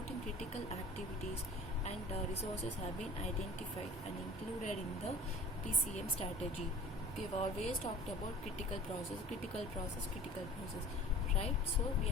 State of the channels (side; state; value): both; normal; correlation 0.42